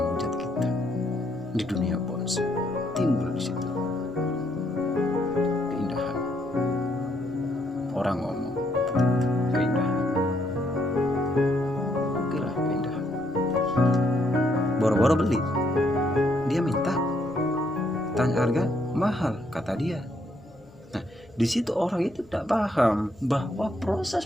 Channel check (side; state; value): left; noise; hum, 26 dB below the sound